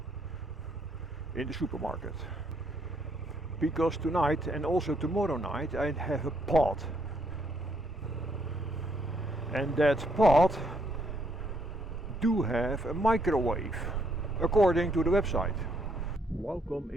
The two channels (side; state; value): both; normal; correlation 0.71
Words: in the supermarket because tonight and also tomorrow night I have a pot, and that pot do have a microwave according to the website. Welcome